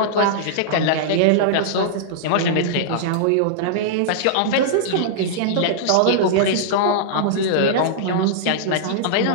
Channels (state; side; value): different; both; correlation -0.01